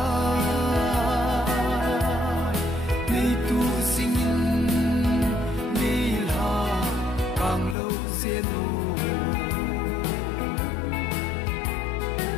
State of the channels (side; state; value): right; drops out; at 7.8 s